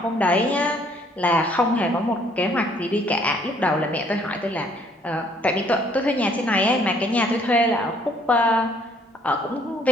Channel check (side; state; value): both; normal; correlation 0.63